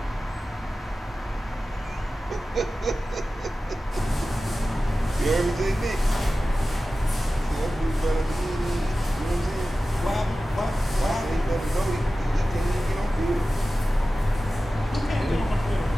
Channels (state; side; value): normal; both; correlation 0.95